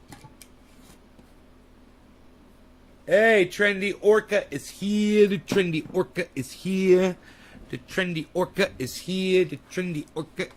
Hey, Trendy Orca is here. The Trendy Orca is here. The Trendy Orca is here. The Trendy Orca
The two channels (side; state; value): both; identical; correlation 1.00